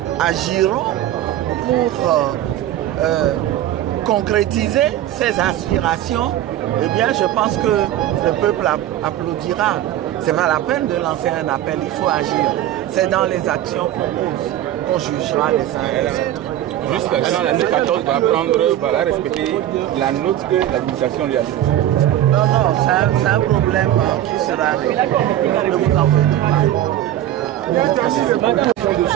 agiront pour concrétiser ces aspirations, eh bien, je pense que le peuple applaudira. Ce n'est pas la peine de lancer un appel, il faut agir. C'est dans les actions qu'on pose qu'on jugera les uns et les autres. Jusqu'à quand la C14 va respecter la note que l'administration lui a donnée? Non, non, c'est un problème qui sera réglé. Ne vous en faites pas.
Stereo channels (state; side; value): quieter; left; 12.6 dB